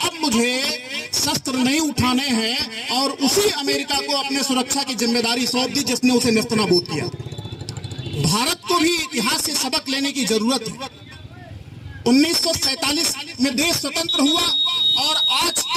मुझे शस्त्र नहीं उठाने हैं और उसी अमेरिका को अपने सुरक्षा की जिम्मेदारी सौंप दी जिसने उसे नेस्तनाबूद किया। भारत को भी इतिहास से सबक लेने की जरूरत है। 1947 में देश स्वतंत्र हुआ और आज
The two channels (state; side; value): identical; both; correlation 1.00